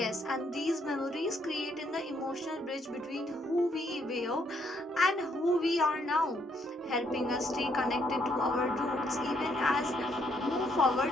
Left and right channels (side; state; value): both; normal; correlation 0.71